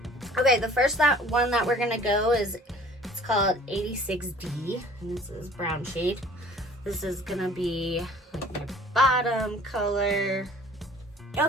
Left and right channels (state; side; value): normal; both; correlation 0.51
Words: Okay, the first one that we're gonna go is, it's called 86D, and this is brown shade. This is gonna be like my bottom color.